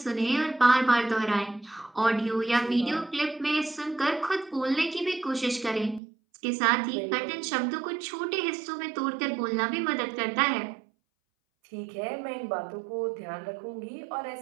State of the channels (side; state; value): left; drops out; at 6.0 s